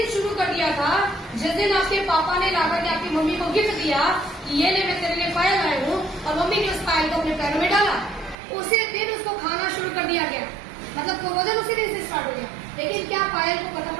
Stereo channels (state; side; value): drops out; left; at 8.3 s